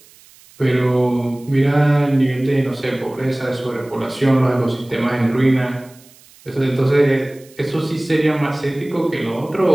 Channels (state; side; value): noise; right; hiss, 26 dB below the sound